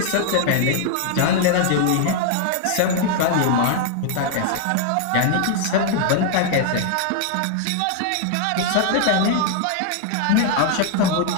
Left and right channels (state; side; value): different; both; correlation 0.00